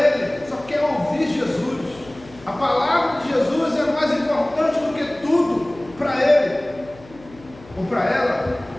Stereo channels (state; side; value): noise; left; hum, 22 dB below the sound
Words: só quer ouvir Jesus. A palavra de Jesus é mais importante do que tudo para Ele ou para ela.